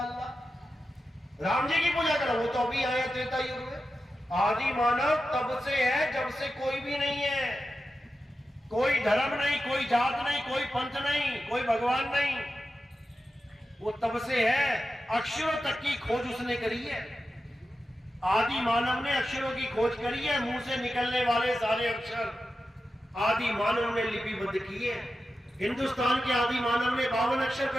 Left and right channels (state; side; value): normal; both; correlation 0.92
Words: अल्लाह। राम जी की पूजा करा, वो तो अभी आए त्रेता युग में। आदि मानव तब से है जब से कोई भी नहीं है। कोई धर्म नहीं, कोई जात नहीं, कोई पंथ नहीं, कोई भगवान नहीं, वो तब से है। अक्षरों तक की खोज उसने करी है। आदि मानव ने अक्षरों की खोज करी है। मुंह से निकलने वाले सारे अक्षर आदि मानव ने लिपिबद्ध किए। हिंदुस्तान के आदि मानव ने 52 अक्षर